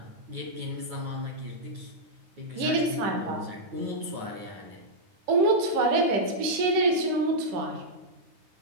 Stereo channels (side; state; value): left; late; 10 ms